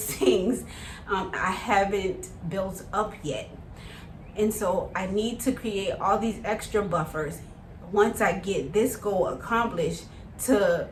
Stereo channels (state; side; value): identical; both; correlation 1.00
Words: I haven't built up yet. And so I need to create all these extra buffers once I get this goal accomplished, to